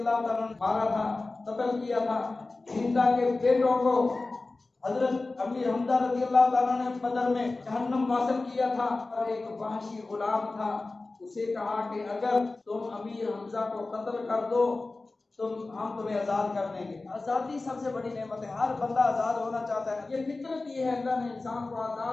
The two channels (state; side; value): quieter; right; 3.4 dB